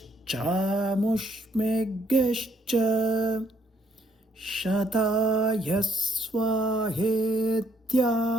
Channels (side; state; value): both; normal; correlation 0.70